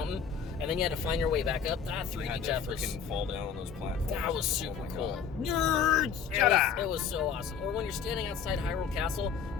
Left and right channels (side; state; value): right; quieter; 6.8 dB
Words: and then you had to find your way back up. That 3D depth was freaking fall down on those platforms. That was super cool. Nerds! It was so awesome. Or when you're standing outside Hyrule Castle